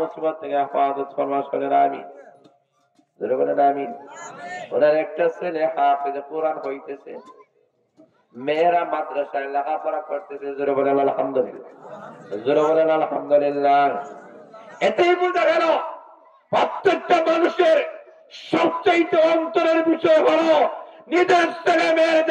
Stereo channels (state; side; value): identical; both; correlation 1.00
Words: থেকে হেফাজত ফরমাও, সকলে আমিন। জোরে বলেন আমিন। ওনার একটা ছেলে হাফেজে কোরআন হইতেছে, মেয়েরা মাদ্রাসায় লেখাপড়া করতেছে। জোরে বলেন আলহামদুলিল্লাহ, জোরে বলেন আলহামদুলিল্লাহ। এতেই বোঝা গেল প্রত্যেকটা মানুষের সবচাইতে অন্তরের বিষয় হলো নিজের ছেলে